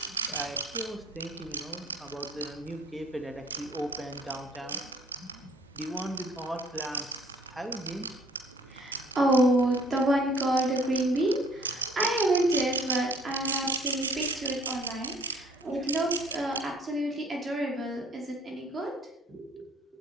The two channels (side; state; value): both; normal; correlation 0.57